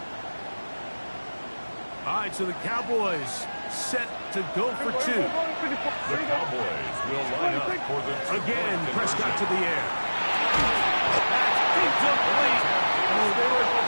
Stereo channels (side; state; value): both; inverted; correlation -1.00